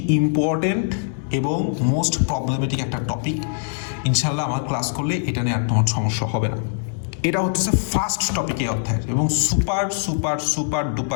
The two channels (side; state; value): right; silent; digital silence